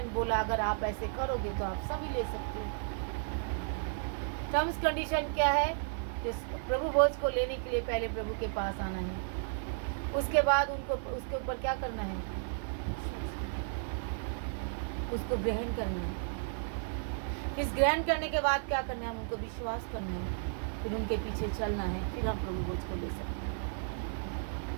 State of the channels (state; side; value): silent; left; 55 dB below the other